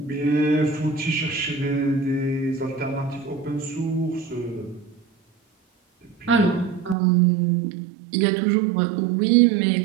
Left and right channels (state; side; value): drops out; left; at 7.0 s